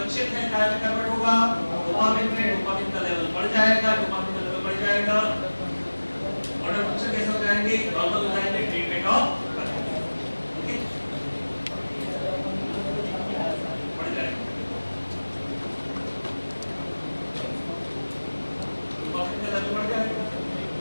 है, काय में कन्वर्ट होगा, डोपामिन में डोपामिन का लेवल बढ़ जाएगा, डोपामिन का लेवल बढ़ जाएगा, ऑर्डर फंक्शन कैसे हो जाएंगे, नॉर्मल हो जाएंगे, ट्रीटमेंट ऑफ ओके बढ़ जाएगा, डोपामिन का लेवल बढ़ जाएगा,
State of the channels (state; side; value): inverted; both; correlation -1.00